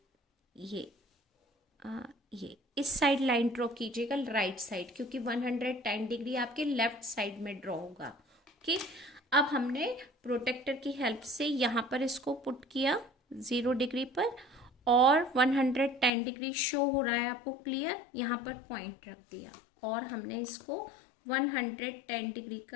ये इस साइड लाइन ड्रॉ कीजिएगा, राइट साइड, क्योंकि 110 डिग्री आपके लेफ्ट साइड में ड्रॉ होगा। ओके, अब हमने प्रोटेक्टर की हेल्प से यहाँ पर इसको पुट किया 0 डिग्री पर और 110 डिग्री शो हो रहा है आपको क्लियर, यहाँ पर पॉइंट रख दिया और हमने इसको 110 डिग्री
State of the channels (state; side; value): drops out; right; at 16.1 s